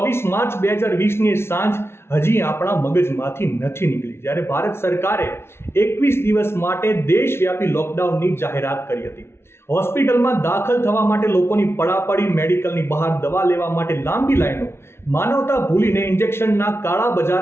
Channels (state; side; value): late; right; 0.12 ms